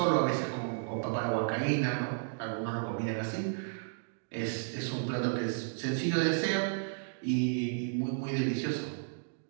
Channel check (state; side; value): silent; left; digital silence